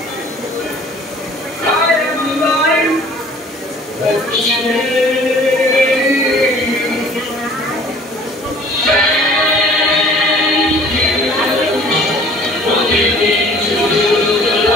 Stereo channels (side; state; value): both; normal; correlation 0.51